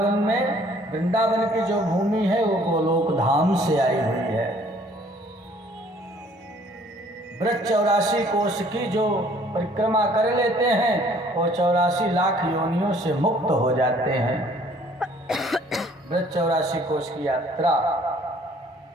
की जो भूमि है वो गोलोक धाम से आई हुई है। ब्रज 84 कोष की जो परिक्रमा कर लेते हैं वो 84 लाख योनियों से मुक्त हो जाते हैं। ब्रज 84 कोष की यात्रा।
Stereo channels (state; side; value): normal; both; correlation 0.58